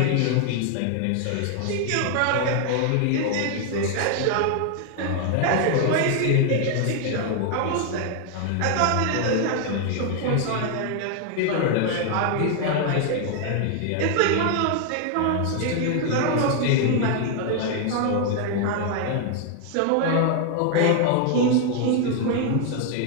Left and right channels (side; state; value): both; different; correlation 0.00